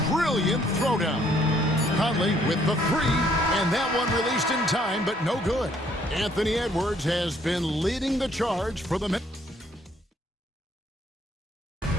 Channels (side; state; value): both; normal; correlation 0.65